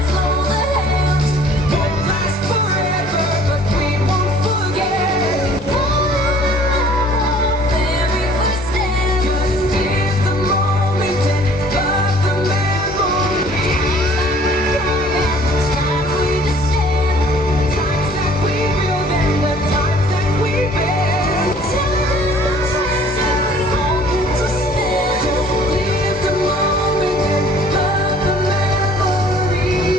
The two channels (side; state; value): both; normal; correlation 0.54